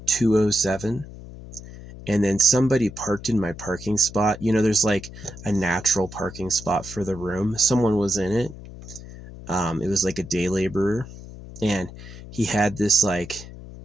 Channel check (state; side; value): noise; left; hum, 15 dB below the sound